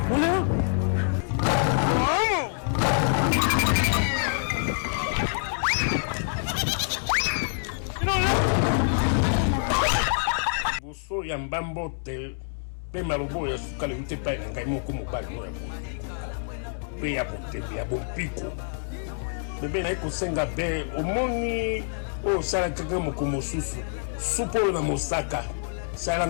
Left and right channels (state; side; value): silent; right; 61 dB below the other